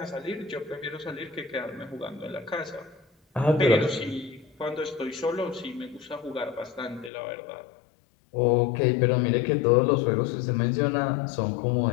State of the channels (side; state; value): right; drops out; at 7.1 s